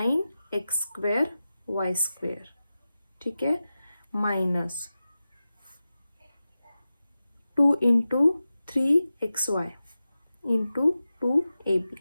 स्क्वेअर y स्क्वेअर. ठीक आहे, minus 2 into 3xy into 2ab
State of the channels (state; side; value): inverted; both; correlation -0.94